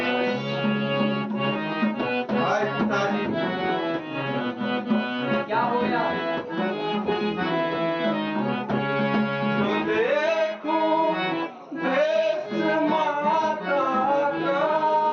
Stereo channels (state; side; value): identical; both; correlation 1.00